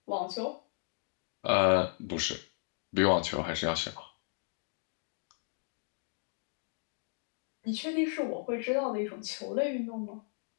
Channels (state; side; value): silent; right; digital silence